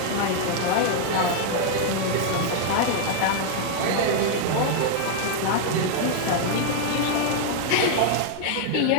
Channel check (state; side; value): different; both; correlation 0.00